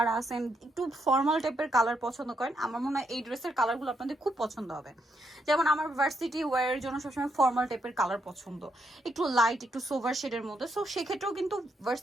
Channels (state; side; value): normal; both; correlation 0.78